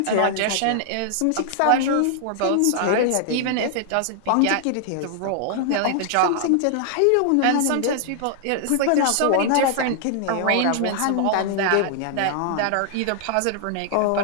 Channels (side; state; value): both; different; correlation -0.01